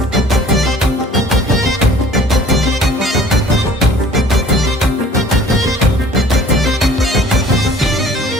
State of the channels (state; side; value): normal; both; correlation 0.51